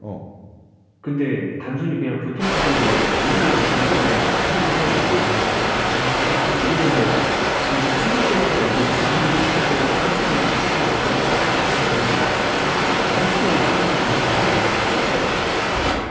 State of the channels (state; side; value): identical; both; correlation 1.00